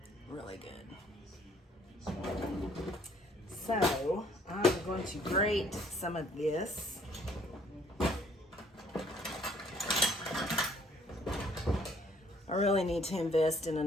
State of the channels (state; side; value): normal; both; correlation 0.62